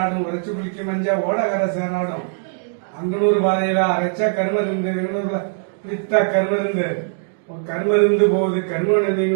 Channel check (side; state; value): left; silent; digital silence